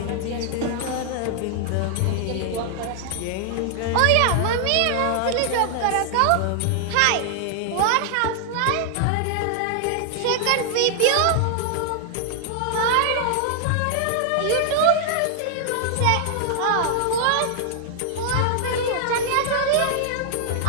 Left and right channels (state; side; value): different; both; correlation 0.00